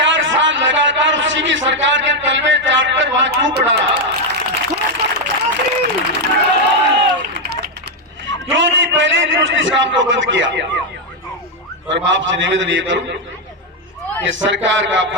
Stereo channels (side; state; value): both; normal; correlation 0.03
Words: साल लगातार उसी की सरकार के तलवे चाटकर वहां क्यों पड़ा रहा? क्यों नहीं पहले दिन उसने इस काम को बंद किया? और मैं आपसे निवेदन ये करूं कि सरकार का